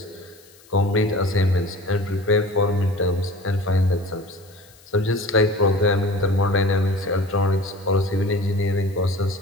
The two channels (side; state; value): left; noise; hiss, 26 dB below the sound